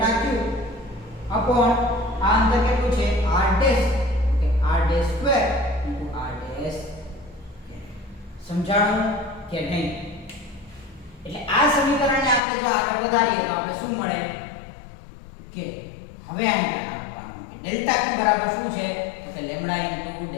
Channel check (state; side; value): drops out; right; at 12.4 s